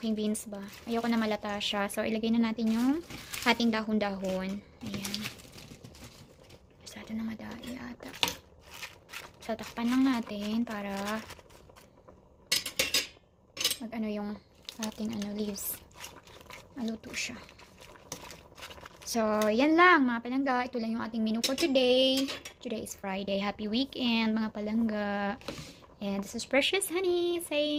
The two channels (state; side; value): identical; both; correlation 1.00